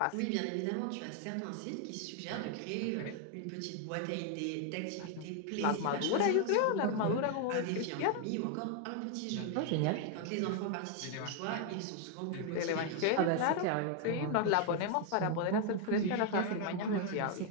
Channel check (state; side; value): different; both; correlation 0.01